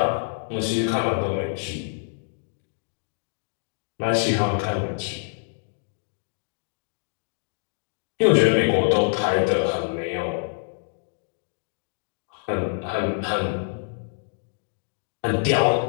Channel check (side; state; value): right; silent; digital silence